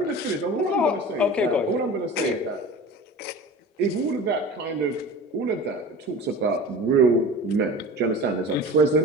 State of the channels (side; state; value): both; normal; correlation 0.36